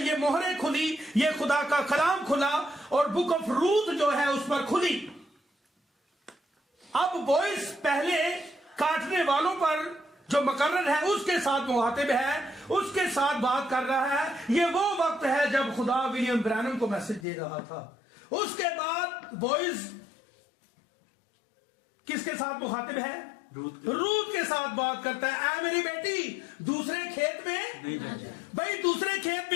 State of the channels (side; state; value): right; drops out; at 17.2 s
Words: یہ مہریں کھلی، یہ خدا کا کلام کھلا، اور بک آف روت جو ہے اس پر کھلی۔ اب بوئز پہلے کاٹنے والوں پر جو مقرر ہے اس کے ساتھ مخاطب ہے، اس کے ساتھ بات کر رہا ہے۔ یہ وہ وقت ہے جب خدا ولیم برینم کو میسج دے رہا تھا۔ اس کے بعد بوئز کس کے ساتھ مخاطب ہے؟ روت کے ساتھ بات کرتا ہے، اے میری بیٹی دوسرے کھیت میں نہیں جائے۔ بھائی دوسرے کھیت